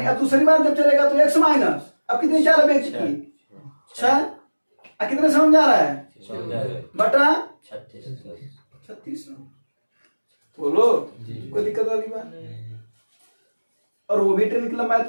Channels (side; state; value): both; inverted; correlation -1.00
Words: अब दूसरी बार जब चलेगा तो x माइनस, अब कितनी चाल है व्यक्ति की 6, कितने समझ आ रहा है बटा 3600, बोलो कोई दिक्कत वाली बात। और वो भी ट्रेन की लंबाई